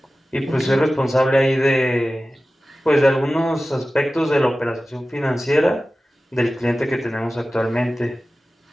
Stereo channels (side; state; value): both; normal; correlation 0.96